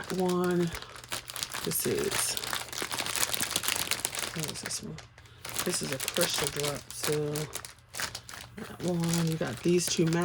one. This is, what is this one? This is a crystal drop, so that one. You got these two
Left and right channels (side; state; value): both; identical; correlation 1.00